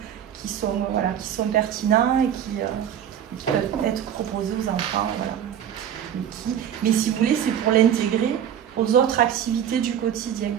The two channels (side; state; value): left; quieter; 9.5 dB